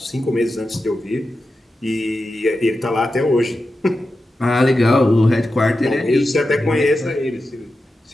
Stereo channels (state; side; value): normal; both; correlation 0.91